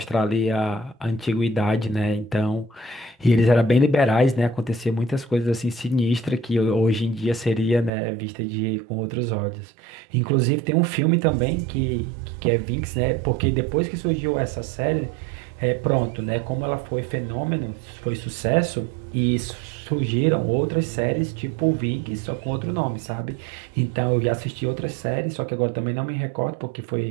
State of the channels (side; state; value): left; drops out; at 7.9 s